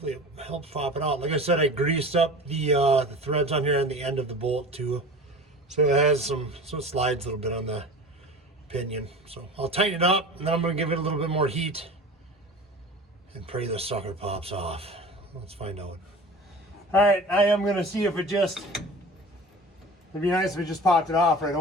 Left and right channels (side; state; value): both; normal; correlation 0.37